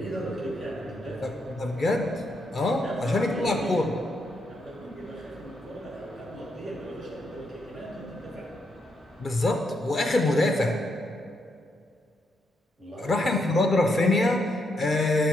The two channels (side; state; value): both; normal; correlation 0.78